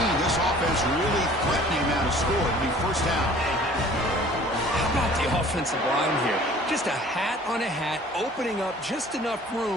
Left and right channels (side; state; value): both; normal; correlation 0.50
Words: This offense really threatening now to score. It'll be 1st down. How about the offensive line here? Just a hat on a hat, opening up just enough